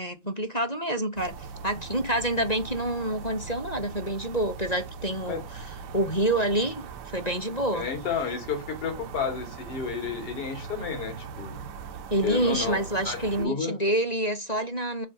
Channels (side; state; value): right; late; 1.9 ms